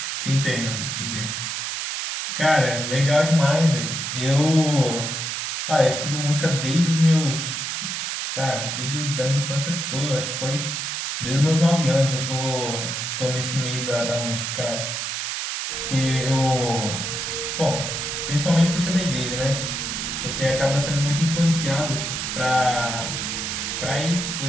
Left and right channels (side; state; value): right; noise; hiss, 3 dB below the sound